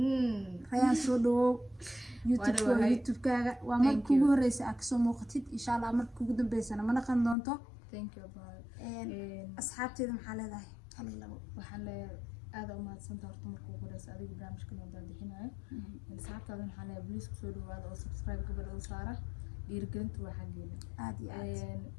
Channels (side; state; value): right; drops out; at 7.4 s